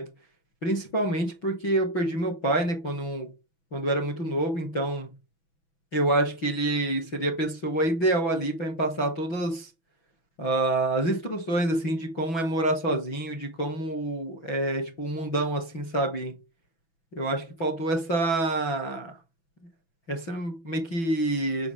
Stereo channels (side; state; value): right; late; 6.1 ms